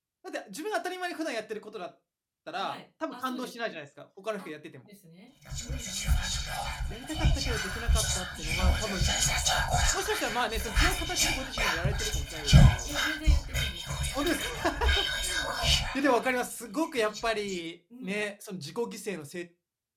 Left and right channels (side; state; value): both; identical; correlation 1.00